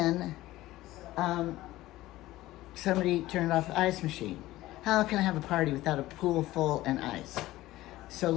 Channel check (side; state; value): right; quieter; 16.6 dB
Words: somebody turned off the ice machine. How can I have a party without a pool full and ice? So